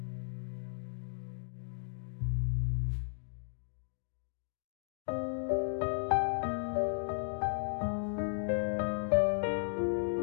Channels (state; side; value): silent; right; digital silence